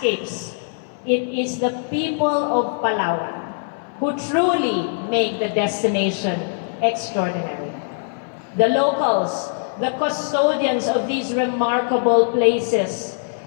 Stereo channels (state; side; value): silent; right; 61 dB below the other